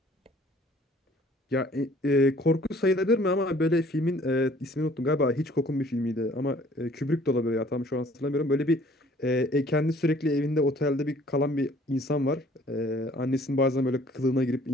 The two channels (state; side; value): normal; both; correlation 0.56